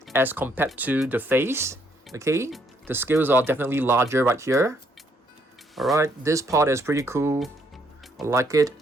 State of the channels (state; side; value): normal; both; correlation 0.70